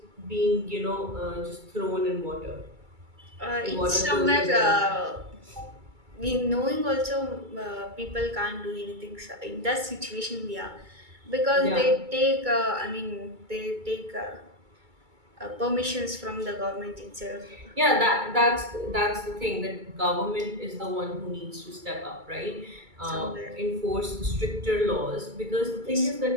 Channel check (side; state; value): left; late; 2.3 ms